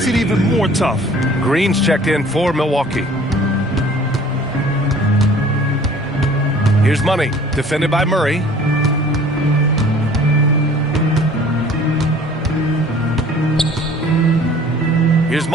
it even more tough. Green's checked in for Milwaukee. Here's Money, defended by Murray. Here's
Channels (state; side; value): normal; both; correlation 0.50